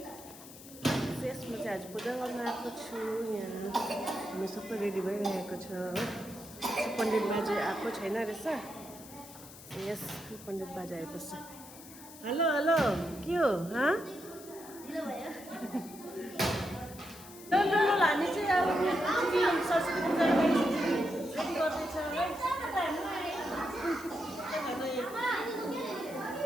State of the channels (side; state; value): left; noise; hiss, 17 dB below the sound